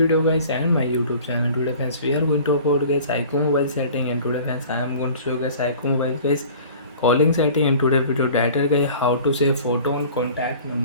guys and my YouTube channel. Today friends we are going to about guys iqoo mobile setting, and today friends I am going to show you guys iqoo mobile guys calling setting, and today video data guys how to save photo on contact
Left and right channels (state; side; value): inverted; both; correlation -0.45